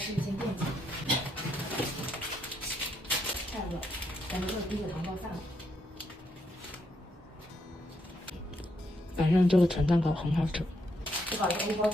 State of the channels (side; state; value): both; normal; correlation 0.77